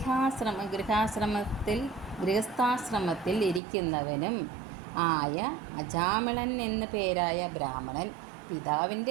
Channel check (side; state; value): left; drops out; at 3.6 s